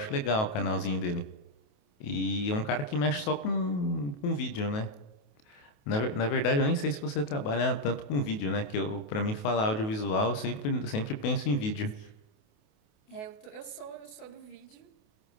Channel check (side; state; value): right; late; 28 ms